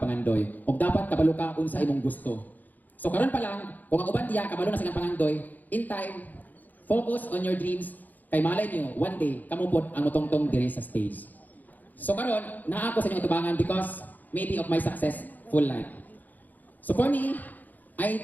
Og dapat kabalo ka unsa imong gusto. So karon pa lang, kung ang uban diya kabalo na silang pangandoy, in time, focus on your dreams. Kay malay niyo, one day, kamupod ang mutongtong diri sa stage. So karon, naa ako sa inyong tubangan because maybe of my successful life. So for me,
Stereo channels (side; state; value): right; late; 0.083 ms